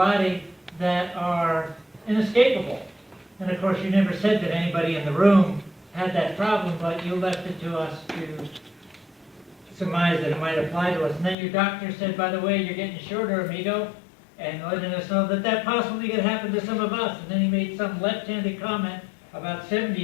that are inescapable. And of course, you never said that anybody in the room had that problem, but you left it to us to surmise that it might apply to us. And then your doctor said, by the way, you're getting shorter, amigo, and letting us know that that possibly could happen to some of us. And then he made some left-handed comment about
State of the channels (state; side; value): drops out; right; at 11.4 s